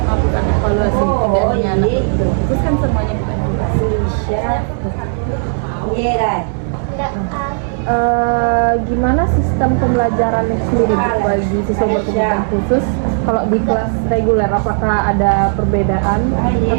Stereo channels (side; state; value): left; silent; digital silence